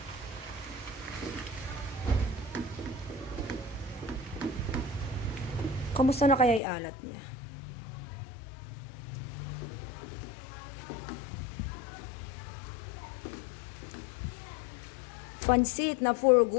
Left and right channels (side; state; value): right; drops out; at 6.6 s